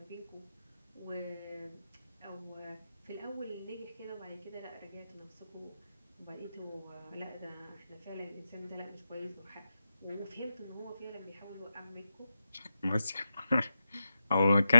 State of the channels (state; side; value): inverted; both; correlation -0.88